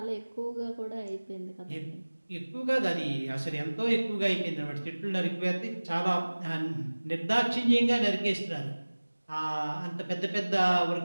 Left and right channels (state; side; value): inverted; both; correlation -1.00